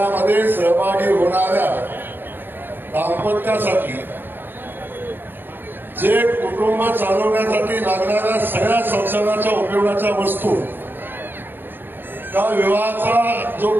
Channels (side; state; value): left; late; 0.096 ms